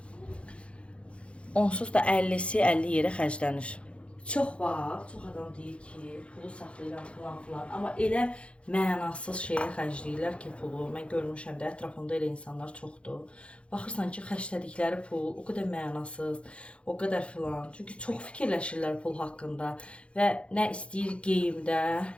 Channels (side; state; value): right; late; 0.060 ms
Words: onsuz da 50'si 50 yerə xərclənir. Çox var, çox adam deyir ki, pulu saxlayıram falan. Amma elə mənasız şeyə xərcləyirlər ki, pulu. Mən görmüşəm də, ətrafımda elə insanlar çoxdur. Baxırsan ki, xərclədikləri pul o qədər mənasız, o qədər filan. Çünki çox fikirləşirlər pul haqqında və nə istəyir geyimdə,